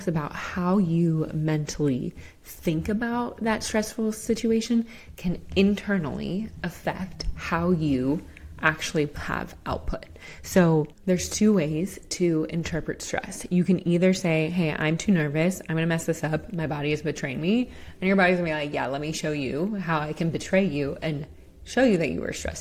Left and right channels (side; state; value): both; identical; correlation 1.00